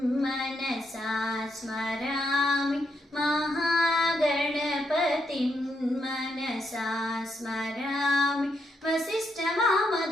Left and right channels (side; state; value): both; normal; correlation 0.80